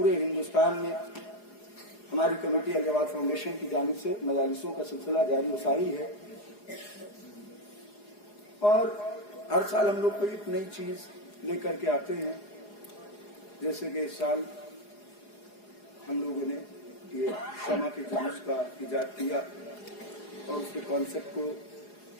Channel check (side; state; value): right; late; 4.8 ms